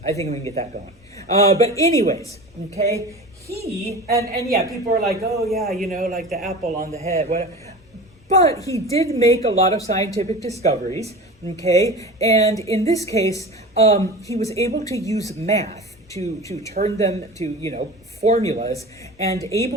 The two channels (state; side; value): normal; both; correlation 0.33